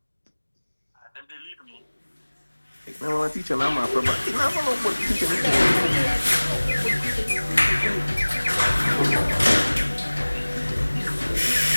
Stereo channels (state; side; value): inverted; both; correlation -1.00